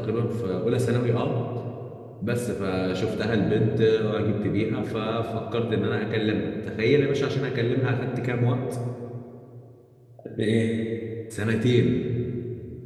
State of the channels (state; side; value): identical; both; correlation 1.00